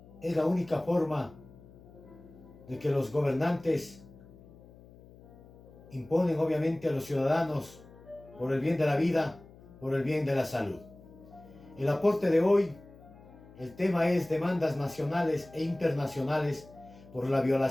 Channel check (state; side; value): noise; left; hum, 22 dB below the sound